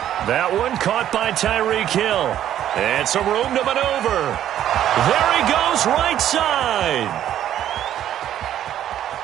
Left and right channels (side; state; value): left; quieter; 11.3 dB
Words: That one caught by Tyreek Hill. And some room to maneuver. There he goes, right side.